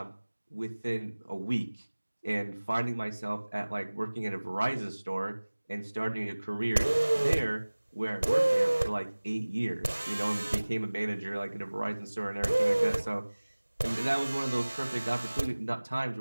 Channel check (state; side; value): inverted; both; correlation -1.00